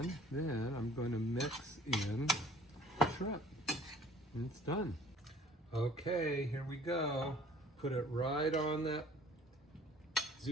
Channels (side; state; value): both; normal; correlation 0.52